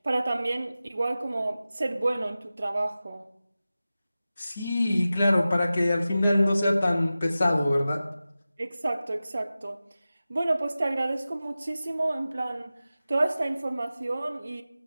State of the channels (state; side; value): inverted; both; correlation -0.95